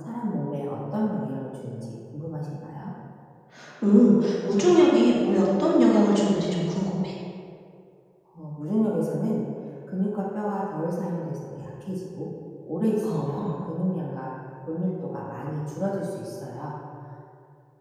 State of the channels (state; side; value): identical; both; correlation 1.00